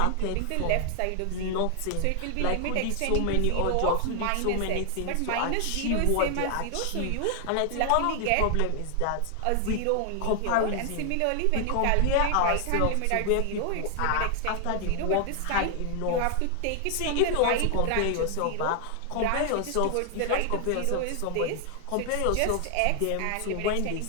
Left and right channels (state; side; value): different; both; correlation 0.00